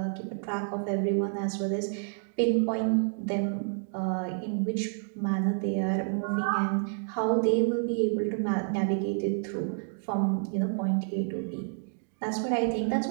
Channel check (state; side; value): silent; left; 58 dB below the other